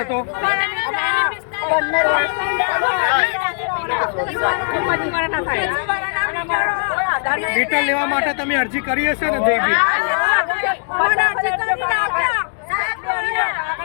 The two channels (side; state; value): right; silent; digital silence